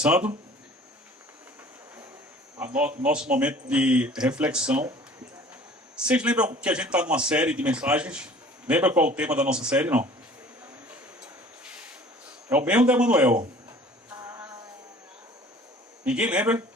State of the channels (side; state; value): both; normal; correlation 0.48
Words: nosso momento de reflexão. Vocês lembram que a gente está numa série de mensagens? Lembra qual é o tema da nossa série, não? É o mesmo da Emanuel. Ninguém lembra?